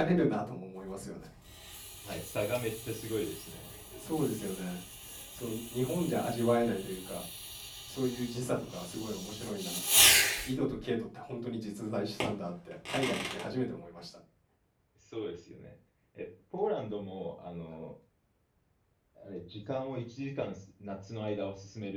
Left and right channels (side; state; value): both; identical; correlation 1.00